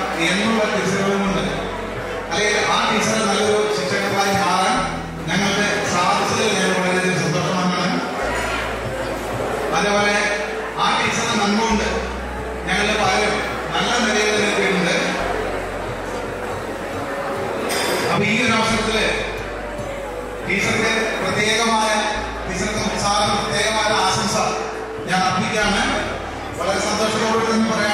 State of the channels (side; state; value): both; identical; correlation 1.00